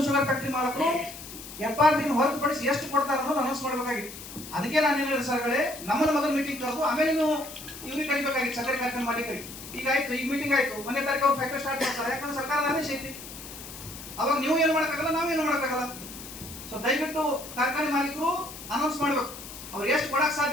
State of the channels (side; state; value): left; noise; hiss, 13 dB below the sound